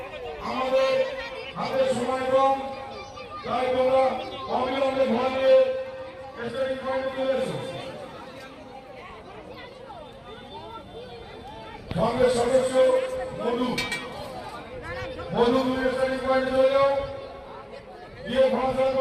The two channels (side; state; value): both; identical; correlation 1.00